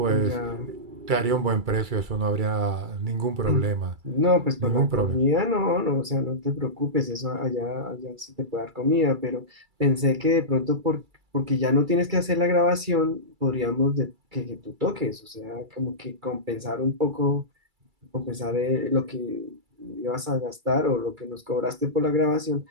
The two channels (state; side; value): late; left; 2.3 ms